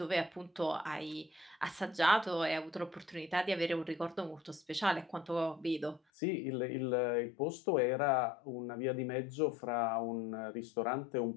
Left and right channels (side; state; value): right; drops out; at 6.0 s